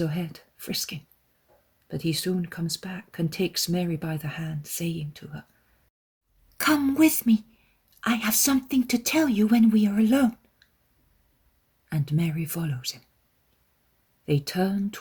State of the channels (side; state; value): both; identical; correlation 1.00